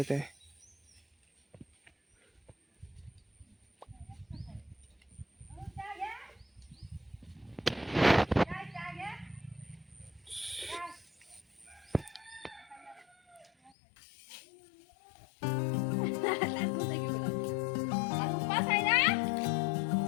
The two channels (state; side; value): drops out; right; at 13.7 s